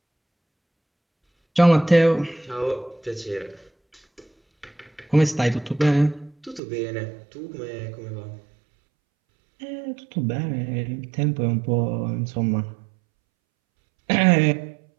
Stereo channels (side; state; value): left; drops out; at 6.6 s